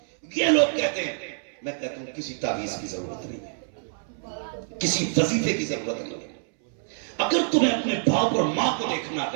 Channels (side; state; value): left; silent; 61 dB below the other